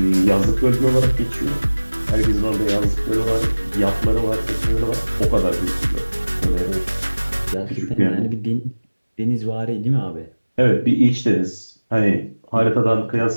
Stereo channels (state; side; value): inverted; both; correlation -1.00